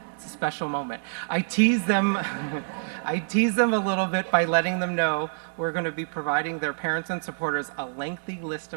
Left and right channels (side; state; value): left; silent; digital silence